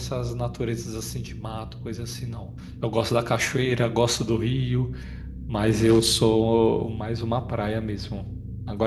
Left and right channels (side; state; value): both; identical; correlation 1.00